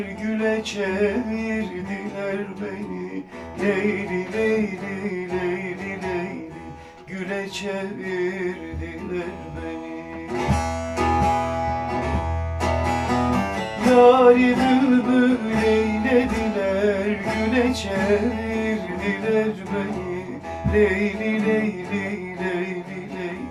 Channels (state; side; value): identical; both; correlation 1.00